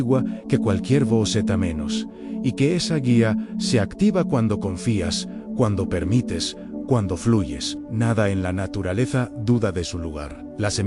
que cualquier voz zeta menos, y que esa guía se activa cuando confías, cuando permites, cuando fluyes. Nada en la naturaleza duda de su lugar. La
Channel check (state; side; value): identical; both; correlation 1.00